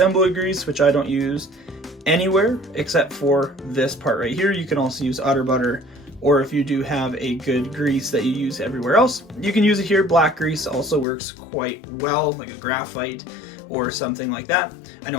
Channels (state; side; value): drops out; right; at 11.1 s